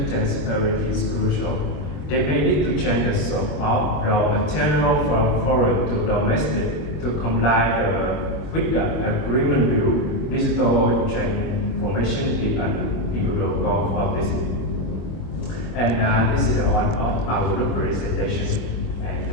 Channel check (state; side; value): late; right; 24 ms